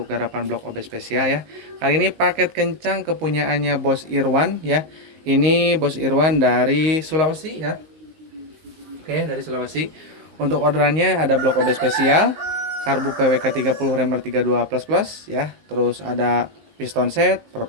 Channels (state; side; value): late; left; 19 ms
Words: garapan blok OB spesial ya. Kali ini paket kencang kepunyaannya Bos Irwan ya. Ini Bos Irwan dari Sulawesi ya. Oke, dari Sulawesi. Untuk orderannya ada blok OB spesial, karbu PWK 30 remer 32 plus plus ya. Terus ada piston set,